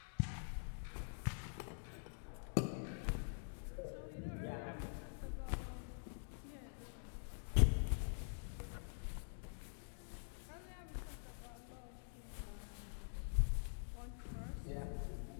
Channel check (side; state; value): right; silent; digital silence